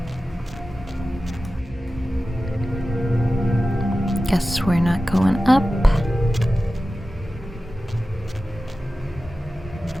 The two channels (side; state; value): both; normal; correlation 0.95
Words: Guess we're not going up.